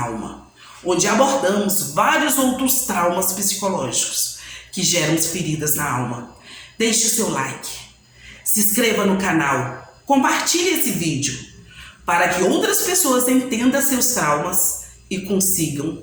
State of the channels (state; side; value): identical; both; correlation 1.00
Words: alma, onde abordamos vários outros traumas psicológicos que geram feridas na alma. Deixe o seu like, se inscreva no canal, compartilhe esse vídeo para que outras pessoas entendam seus traumas e consigam